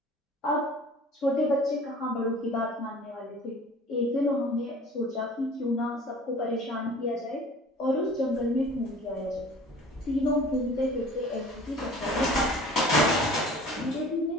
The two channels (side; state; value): both; normal; correlation 0.46